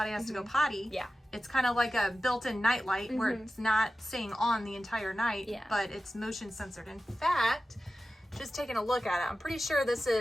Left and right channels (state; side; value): normal; both; correlation 0.94